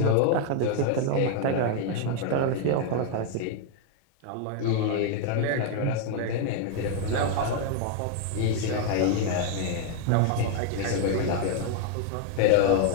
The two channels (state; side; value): different; both; correlation 0.00